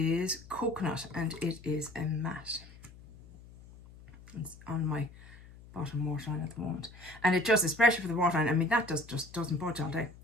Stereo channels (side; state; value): left; noise; hum, 20 dB below the sound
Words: Coconut, and it is a matte. It's on my bottom waterline at the moment. And it just, especially for the waterline, I mean, that just doesn't budge all day.